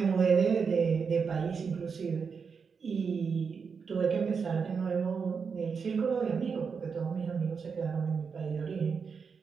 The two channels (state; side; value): quieter; left; 5.7 dB